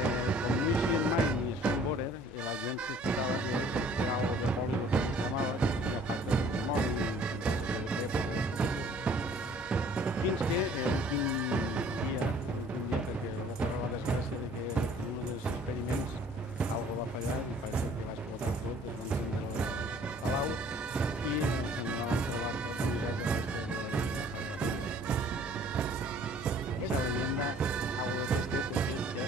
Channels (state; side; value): normal; both; correlation 0.55